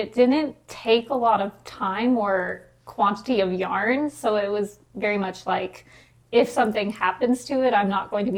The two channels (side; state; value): both; identical; correlation 1.00